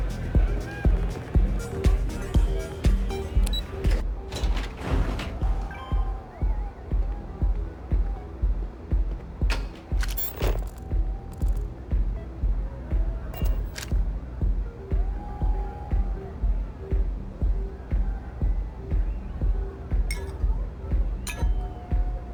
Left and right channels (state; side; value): identical; both; correlation 1.00